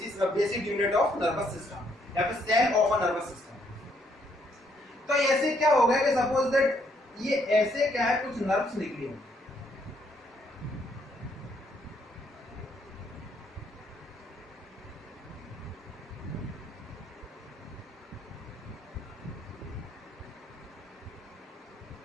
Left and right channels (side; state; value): both; normal; correlation 0.71